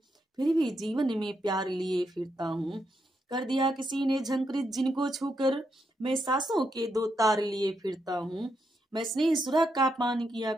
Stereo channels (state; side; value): normal; both; correlation 0.81